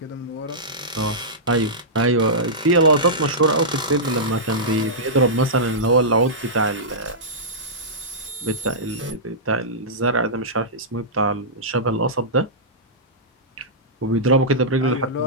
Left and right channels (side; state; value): both; normal; correlation -0.15